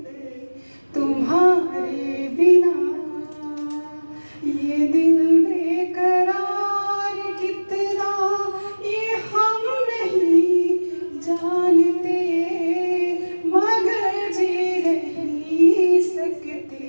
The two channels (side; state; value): both; inverted; correlation -1.00